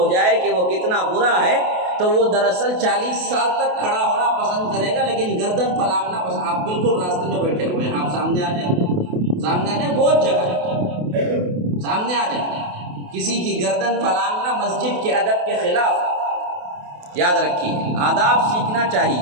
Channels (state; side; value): late; left; 28 ms